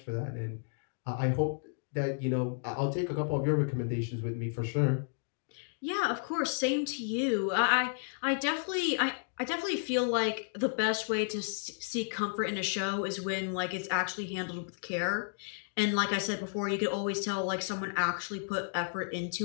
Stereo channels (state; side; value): silent; right; digital silence